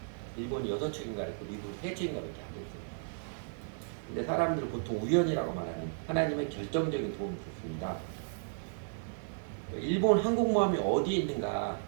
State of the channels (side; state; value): left; silent; digital silence